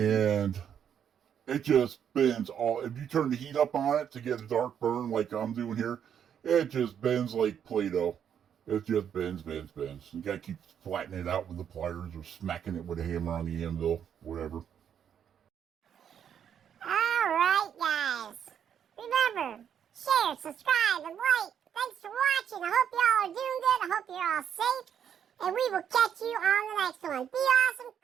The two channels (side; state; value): left; quieter; 8.6 dB